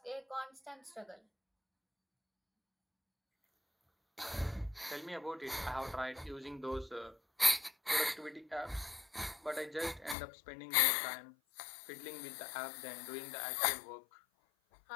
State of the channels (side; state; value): right; drops out; at 10.2 s